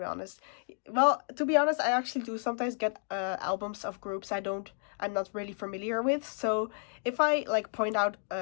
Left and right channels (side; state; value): right; silent; 57 dB below the other